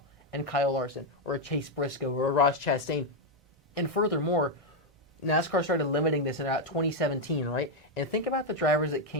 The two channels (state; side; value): normal; both; correlation 0.02